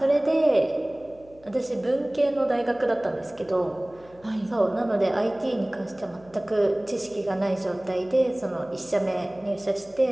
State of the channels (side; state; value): left; noise; hum, 26 dB below the sound